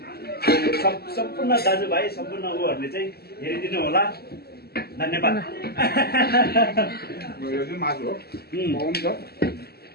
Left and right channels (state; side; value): late; right; 0.46 ms